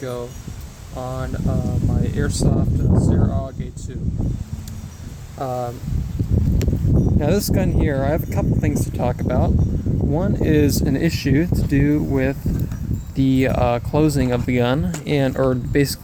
on my Airsoft Steyr Aug A2. Now this gun here, I have a couple things to talk about. One is an issue to do with the closing of the gun, or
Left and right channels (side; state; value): both; identical; correlation 1.00